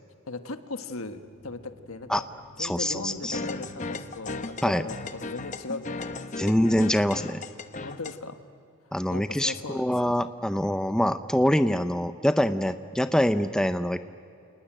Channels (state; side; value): normal; both; correlation 0.86